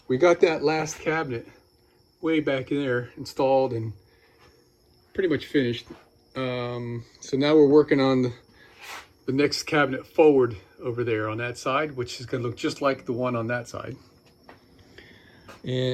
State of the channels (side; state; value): both; identical; correlation 1.00